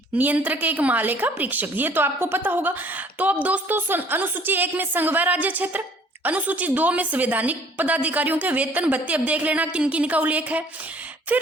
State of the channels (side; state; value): both; normal; correlation 0.56